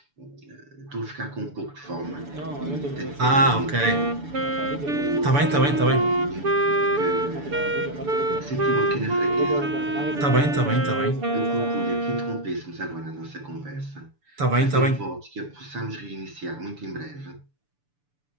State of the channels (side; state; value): left; late; 6.9 ms